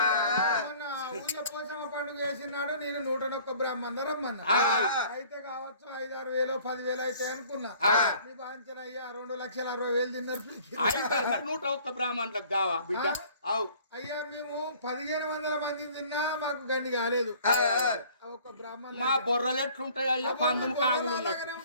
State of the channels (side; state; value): both; inverted; correlation -0.53